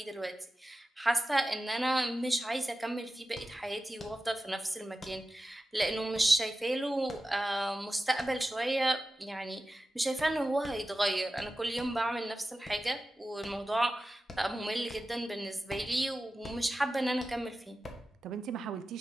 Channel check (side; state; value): both; normal; correlation 0.93